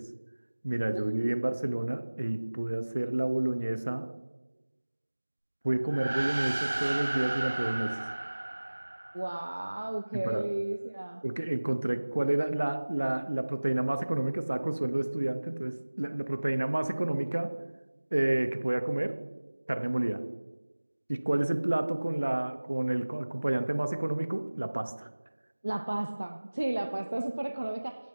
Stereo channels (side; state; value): both; inverted; correlation -1.00